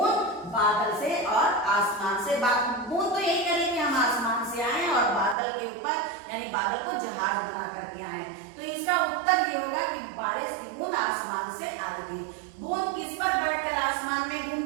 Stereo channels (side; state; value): left; drops out; at 5.4 s